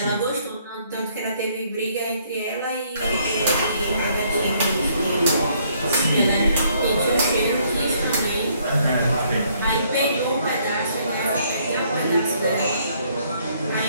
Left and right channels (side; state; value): both; inverted; correlation -0.67